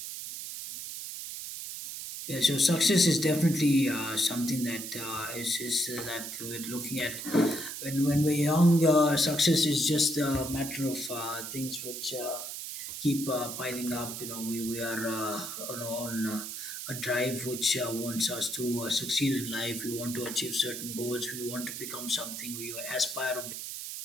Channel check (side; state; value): right; noise; hiss, 7 dB below the sound